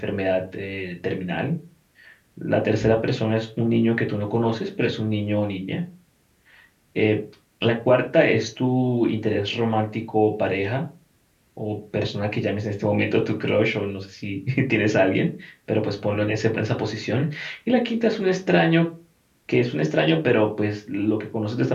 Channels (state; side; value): identical; both; correlation 1.00